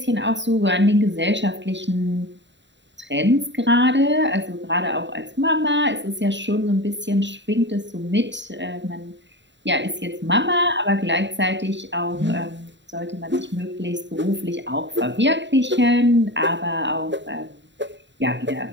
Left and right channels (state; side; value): late; left; 0.52 ms